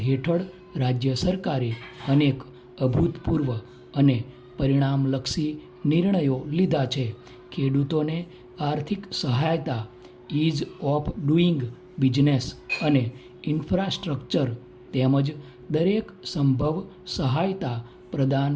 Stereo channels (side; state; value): both; identical; correlation 1.00